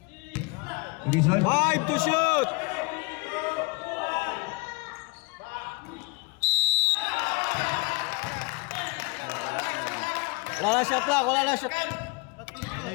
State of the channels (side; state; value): right; quieter; 29.1 dB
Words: Dizon. 5 to shoot! Wala na shot lang, wala na shot. Ano